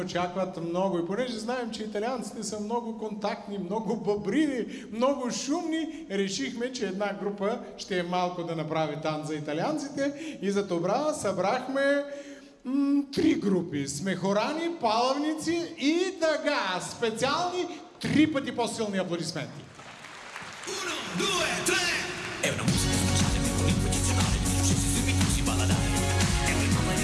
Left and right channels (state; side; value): identical; both; correlation 1.00